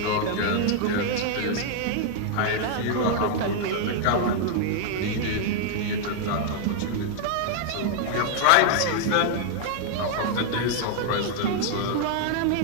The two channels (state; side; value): different; both; correlation 0.00